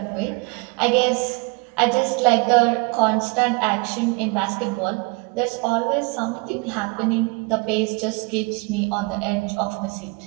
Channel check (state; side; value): quieter; left; 29.5 dB